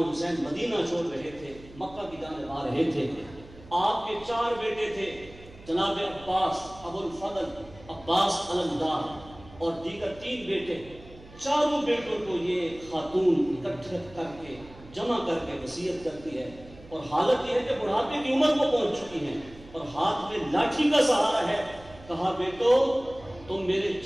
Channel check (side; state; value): right; noise; hum, 20 dB below the sound